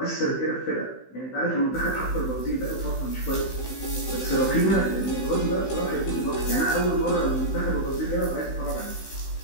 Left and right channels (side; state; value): right; late; 15 ms